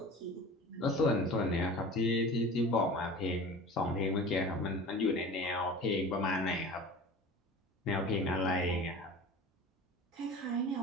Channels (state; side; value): normal; both; correlation 0.38